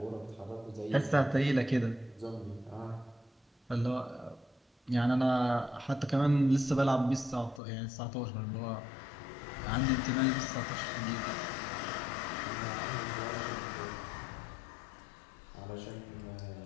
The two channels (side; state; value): right; drops out; at 7.6 s